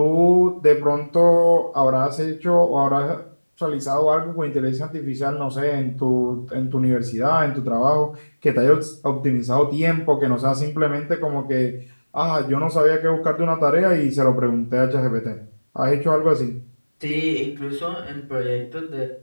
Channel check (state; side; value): inverted; both; correlation -1.00